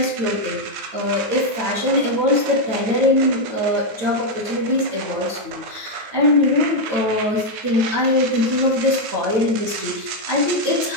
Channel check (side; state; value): left; late; 9.1 ms